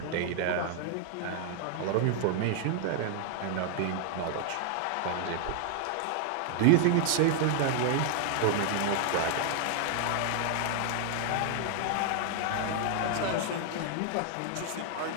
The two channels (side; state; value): both; different; correlation 0.00